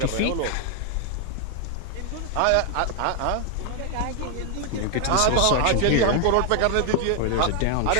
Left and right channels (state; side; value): different; both; correlation 0.00